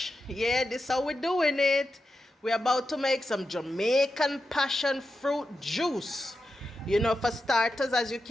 Yeah, this is how we're doing it. We're about to make some Jamaican passion fruit juice. You know, for starters, as you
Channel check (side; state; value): both; normal; correlation 0.89